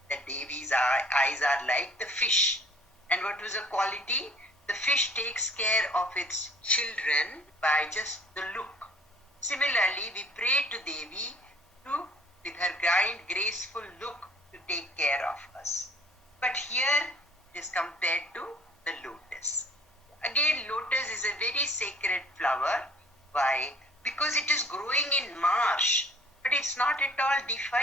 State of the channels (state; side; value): normal; both; correlation 0.55